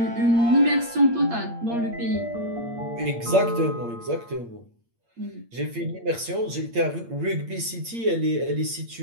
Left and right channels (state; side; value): late; left; 8.6 ms